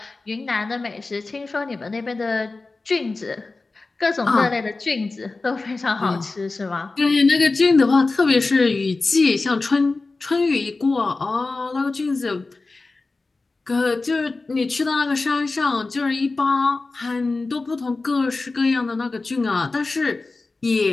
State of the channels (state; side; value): quieter; right; 3.6 dB